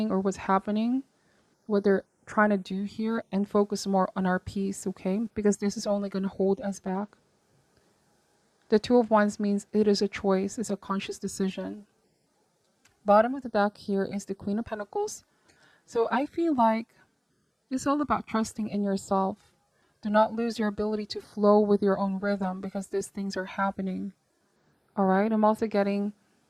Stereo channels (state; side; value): identical; both; correlation 1.00